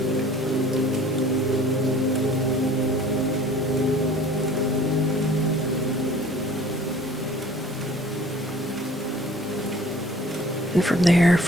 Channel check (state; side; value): normal; both; correlation 0.49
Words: And from there,